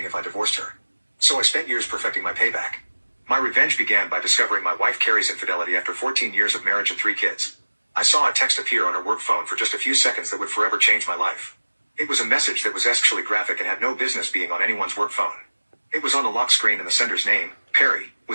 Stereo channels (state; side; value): inverted; both; correlation -1.00